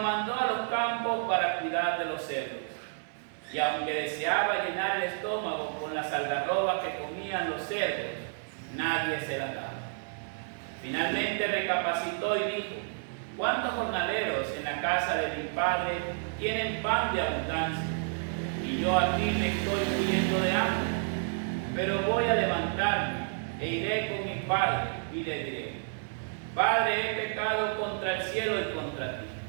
a los campos para cuidar de los cerdos. Y aunque deseaba llenar el estómago con las algarrobas que comían los cerdos, nadie se las daba. Finalmente recapacitó y dijo: ¿cuántos jornaleros en la casa de mi padre tienen pan de abundancia? Y yo aquí me estoy muriendo de hambre. Pero voy a levantarme e iré con mi padre y le diré: Padre, he pecado contra el cielo y contra ti,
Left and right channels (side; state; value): left; silent; digital silence